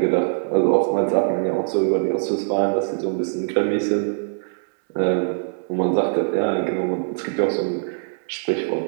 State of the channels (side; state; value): left; silent; digital silence